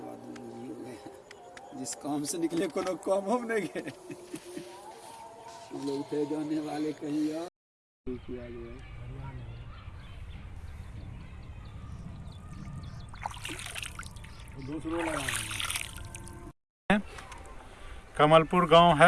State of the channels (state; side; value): identical; both; correlation 1.00